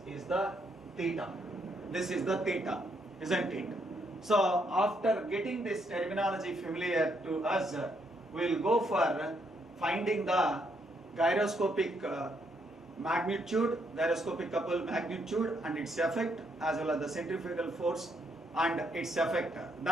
is the theta. This is the theta, isn't it? So after getting this terminology familiar to us, we will go for finding the gyroscopic magnitude, gyroscopic couple magnitude and its effect, as well as the centrifugal force and its effect.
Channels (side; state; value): both; normal; correlation 0.75